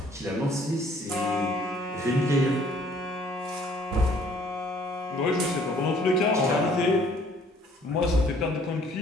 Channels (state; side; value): normal; both; correlation 0.59